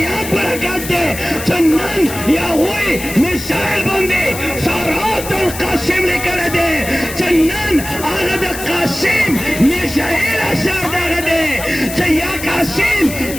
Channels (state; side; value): noise; left; hiss, 10 dB below the sound